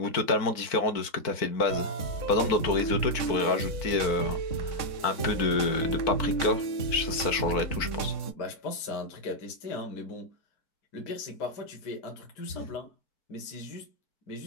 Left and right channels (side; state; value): right; late; 4.5 ms